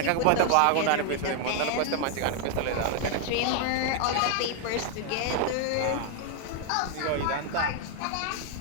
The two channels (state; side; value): different; both; correlation 0.00